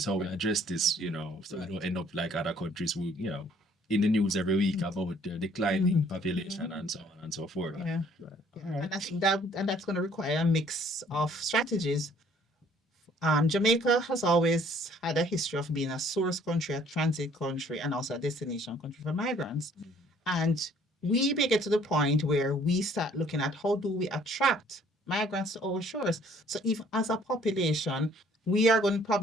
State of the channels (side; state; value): both; normal; correlation 0.59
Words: how we address this, so we don't end up like other countries who, in the news every week about the declining population and so on and so forth. Yeah. And I think that's going to require a mix of strategies. Jamaica has always had a history of being a source country, a transit country, and also a destination country for migrants. And we may get to the point where we start looking at how do we attract migrants to our shores. So if as a population, we are going to